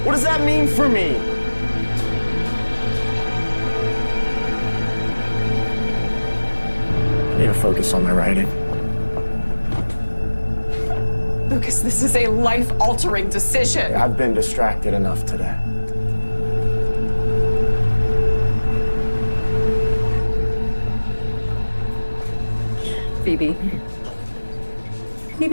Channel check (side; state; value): both; inverted; correlation -1.00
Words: What does that mean for me? I need to focus on my writing. Lucas, this is a life-altering decision. I've been distracted enough today. Phoebe.